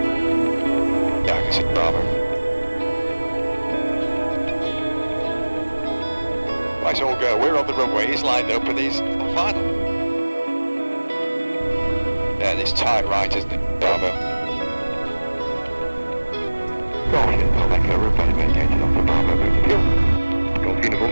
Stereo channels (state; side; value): inverted; both; correlation -1.00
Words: Yeah, I can see Bravo. Right, so we'll go. We're on the runway, he's lined up and he's on final. Yeah, it's tight right, isn't it? Bravo. Golf Uniform Echo, runway vacated onto Bravo, move to fuel. Golf Uniform